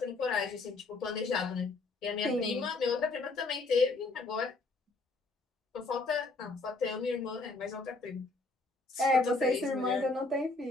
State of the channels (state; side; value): quieter; right; 3.4 dB